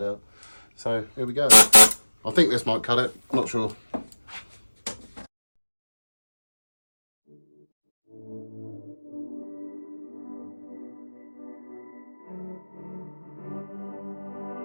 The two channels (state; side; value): inverted; both; correlation -1.00